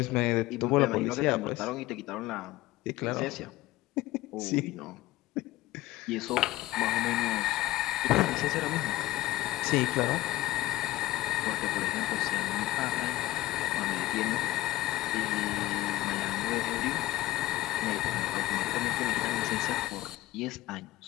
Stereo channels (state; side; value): quieter; right; 17.0 dB